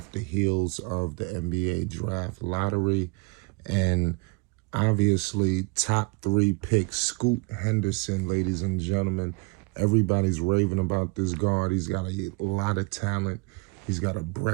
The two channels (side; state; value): left; quieter; 28.1 dB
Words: the heels of the NBA draft lottery, and obviously top three pick Scoot Henderson, ladies and gentlemen. Everybody's raving about this guard. He's got a lot of talent. He's got a